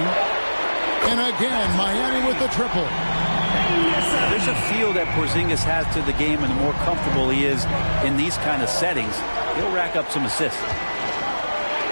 And again, Miami with the triple. There's a feel that Porzingis has to the game, and the more comfortable he is in these kind of settings, he'll rack up some assists.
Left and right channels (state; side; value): inverted; both; correlation -1.00